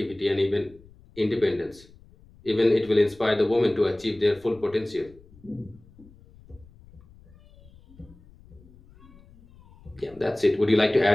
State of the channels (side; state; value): left; noise; rumble, 25 dB below the sound